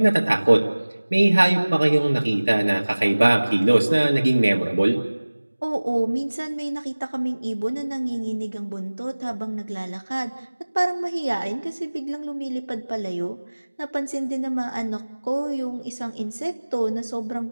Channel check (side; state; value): both; inverted; correlation -1.00